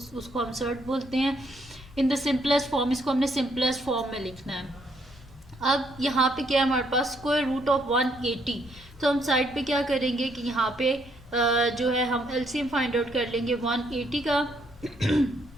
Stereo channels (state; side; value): noise; left; rumble, 21 dB below the sound